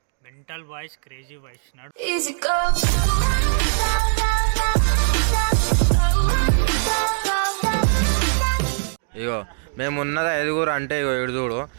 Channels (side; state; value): left; silent; digital silence